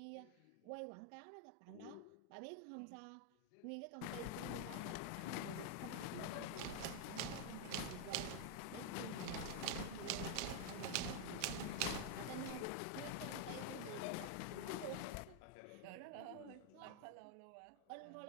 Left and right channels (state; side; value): different; both; correlation 0.00